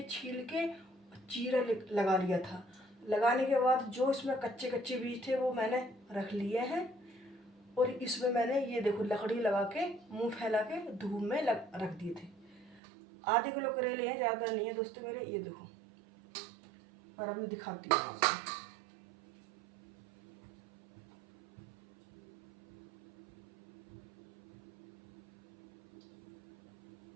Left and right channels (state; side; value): drops out; left; at 12.8 s